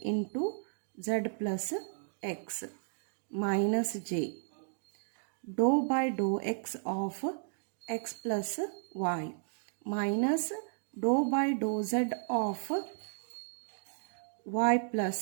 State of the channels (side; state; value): left; silent; digital silence